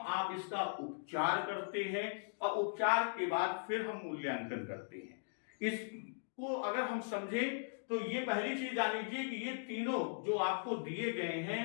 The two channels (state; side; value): silent; right; digital silence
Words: आप इसका उपचार करते हैं और उपचार के बाद फिर हम मूल्यांकन करते हैं। इसको अगर हम समझें तो ये पहली चीज जान लीजिए कि ये तीनों जो आपको दिए गए